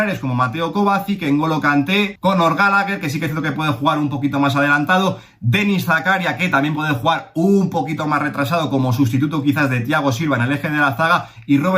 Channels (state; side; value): identical; both; correlation 1.00